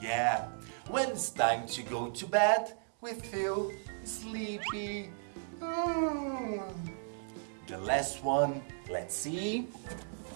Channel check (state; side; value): silent; left; digital silence